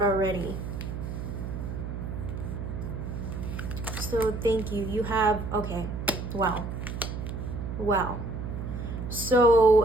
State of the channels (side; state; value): right; noise; hum, 5 dB below the sound